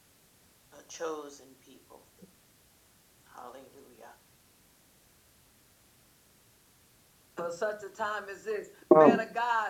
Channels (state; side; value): identical; both; correlation 1.00